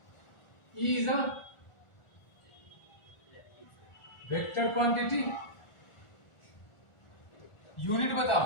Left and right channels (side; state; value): right; late; 1.4 ms